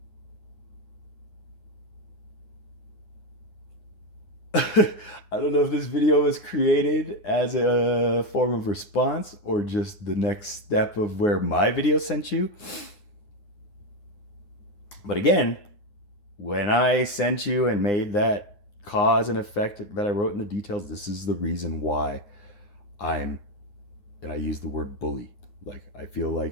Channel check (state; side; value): late; right; 9.8 ms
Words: I don't know if this video was created as a form of response or just the next step of where my video sent you. But again, when I sent you and made that cause and effect that I wrote in the details, this is the reason why and I use the word bully. Like, I feel